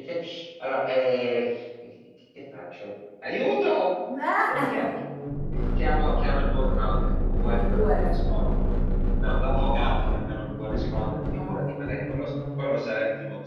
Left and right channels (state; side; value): identical; both; correlation 1.00